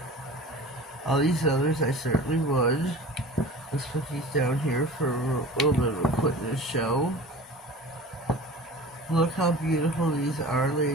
All these others I certainly would. Let's put these down here for a little bit of a quickness show. Look how beautiful these are,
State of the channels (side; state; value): both; normal; correlation 0.39